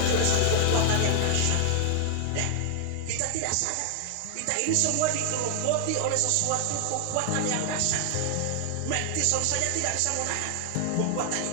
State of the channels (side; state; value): both; different; correlation 0.00